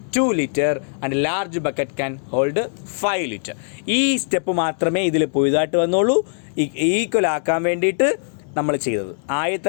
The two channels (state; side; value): silent; right; digital silence